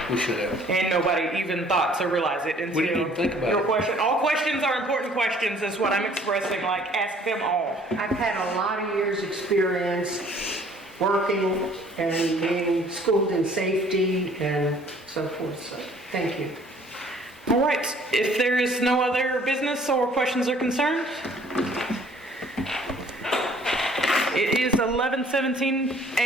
we should have. And nobody even thought to realize it until We didn't even think about your it. question. All questions are important questions is what I'm expressing, like ask them all. I've had a lot of years' experience working and being schooled in safety and so forth, so thank you. All right, if there is no other business or questions or concerns, it is 11:17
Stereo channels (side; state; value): both; normal; correlation 0.57